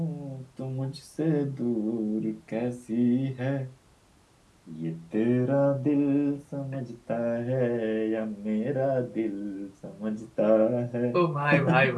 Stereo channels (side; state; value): both; identical; correlation 1.00